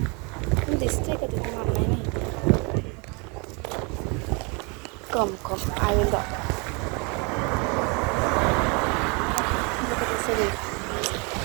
दिसतंय का तिथे? मला नाही माहिती. कम आय विल दाखव.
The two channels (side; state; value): left; quieter; 31.4 dB